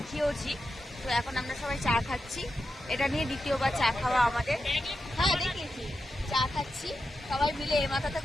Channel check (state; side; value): normal; both; correlation 0.89